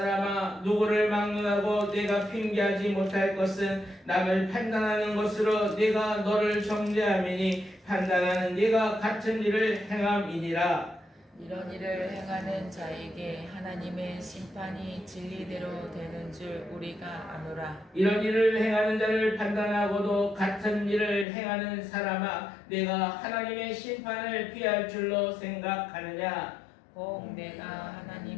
누구를 막론하고 네가 핑계하지 못할 것은 남을 판단하는 것으로 네가 너를 정죄함이니 판단하는 네가 같은 일을 행함이니라. 이런 일을 행하는 자에게 하나님의 심판이 진리대로 되는 줄 우리가 아노라. 이런 일을 행하는 자를 판단하고도 같은 일을 행하는 사람아, 내가 하나님의 심판을 피할 줄로 생각하느냐? 혹 내가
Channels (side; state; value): right; drops out; at 21.2 s